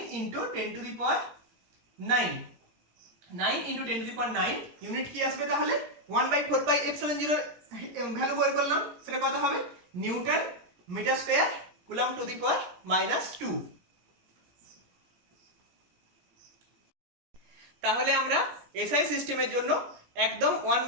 × 10⁹9। 9 × 10⁹9 ইউনিট কি আসবে তাহলে, 1/4 pi epsilon 0 ভ্যালু বের করলাম, সেটা কত হবে, newton metre square coulomb to the power -2। তাহলে আমরা এসআই সিস্টেমের জন্য একদম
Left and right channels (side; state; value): left; late; 17 ms